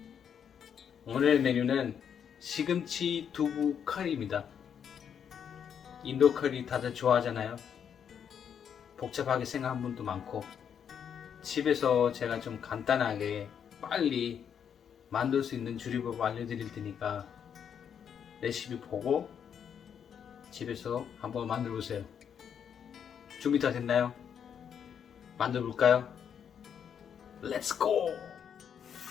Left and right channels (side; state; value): right; quieter; 8.0 dB